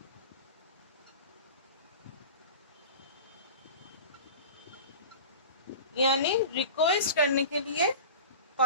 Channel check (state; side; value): inverted; both; correlation -0.34